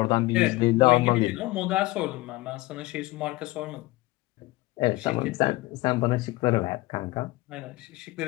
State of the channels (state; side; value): quieter; right; 20.1 dB